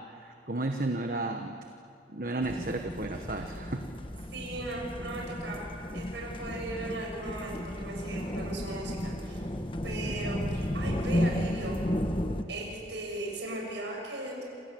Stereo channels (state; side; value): normal; both; correlation 0.65